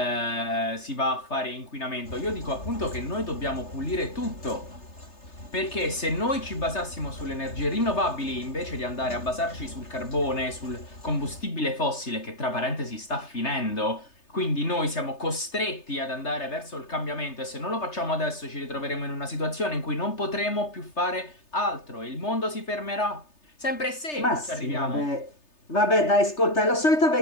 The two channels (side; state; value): right; late; 3.3 ms